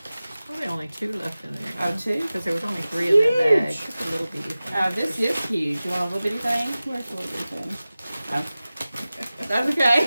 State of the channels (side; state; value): both; inverted; correlation -0.96